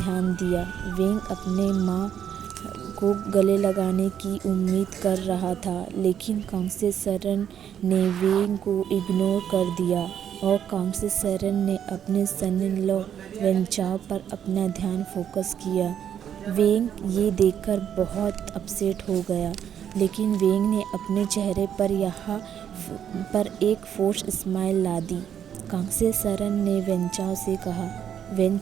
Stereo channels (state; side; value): quieter; left; 9.2 dB